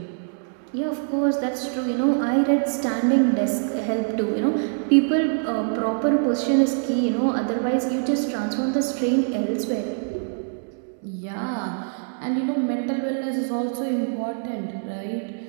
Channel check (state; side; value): silent; left; digital silence